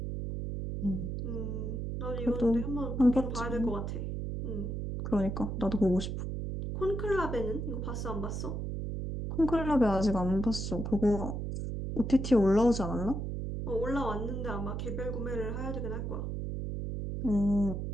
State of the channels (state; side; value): noise; right; hum, 3 dB below the sound